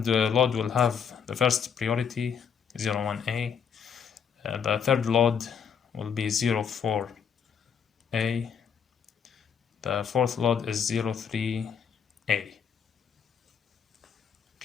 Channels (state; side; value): quieter; right; 7.1 dB